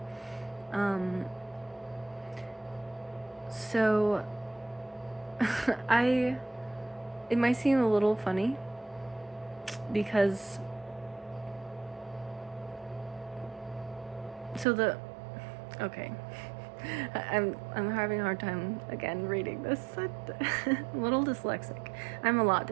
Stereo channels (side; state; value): left; drops out; at 14.7 s